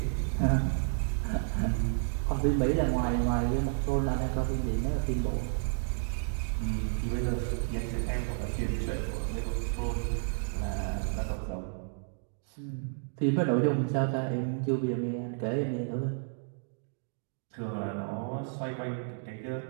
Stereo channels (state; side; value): silent; left; digital silence